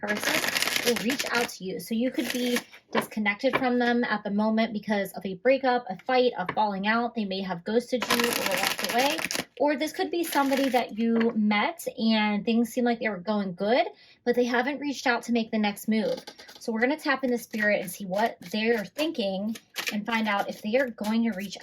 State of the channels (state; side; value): identical; both; correlation 1.00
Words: will reach out to you. So you could be disconnected from them at the moment because of a breakup, a fight, a falling out. They may have ghosted you or walked away. Or this could be somebody that you met and things seem like they were going good, but they haven't reached out to make the next move. So we're going to tap into spirit and see what they're thinking and find out if they are going to reach